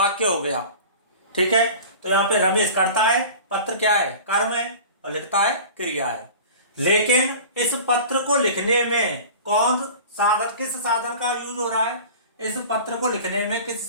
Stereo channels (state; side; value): inverted; both; correlation -0.38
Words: हो गया। ठीक है, तो यहाँ पे रमेश करता है, पत्र क्या है? कर्म है, और लिखता है क्रिया है। लेकिन इस पत्र को लिखने में कौन साधन, किस साधन का यूज हो रहा है? इस पत्र को लिखने में किस